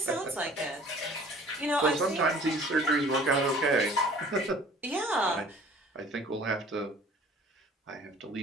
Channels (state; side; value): normal; both; correlation 0.50